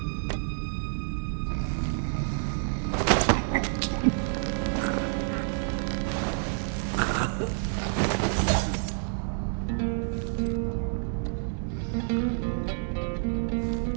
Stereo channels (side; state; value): left; silent; 59 dB below the other